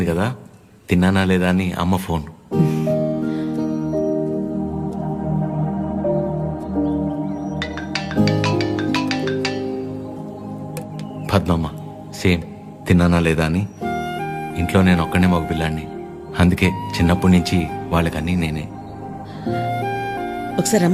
కదా, తిన్నానా లేదా అని అమ్మ ఫోన్. పద్మమ్మ సేమ్ తిన్నానా లేదా అని. ఇంట్లో నేను ఒక్కనే మగ పిల్లాడిని, అందుకే చిన్నప్పటి నుంచి వాళ్ళకన్నీ నేనే. ఒకసారి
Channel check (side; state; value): both; identical; correlation 1.00